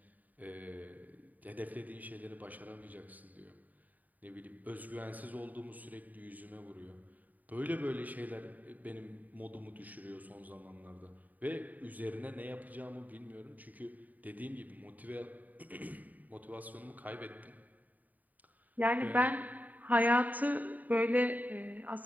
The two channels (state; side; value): late; left; 0.080 ms